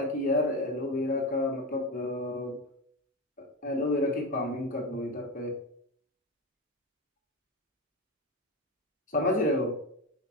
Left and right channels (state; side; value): normal; both; correlation 0.19